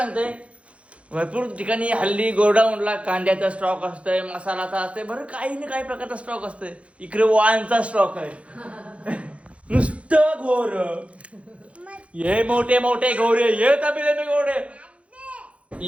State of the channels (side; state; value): left; late; 0.062 ms